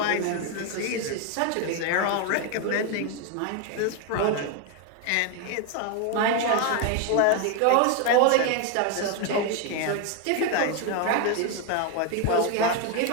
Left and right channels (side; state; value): both; different; correlation 0.01